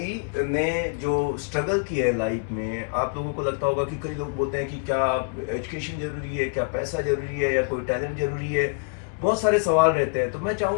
ने जो स्ट्रगल किया है लाइफ में, आप लोगों को लगता होगा कि कई लोग बोलते हैं कि क्या एजुकेशन जरूरी है, क्या पैसा जरूरी है, या कोई टैलेंट जरूरी है। बहुत सारे सवाल रहते हैं। तो मैं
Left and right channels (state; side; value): quieter; right; 36.6 dB